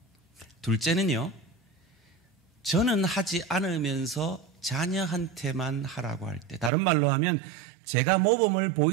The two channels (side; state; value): left; drops out; at 6.7 s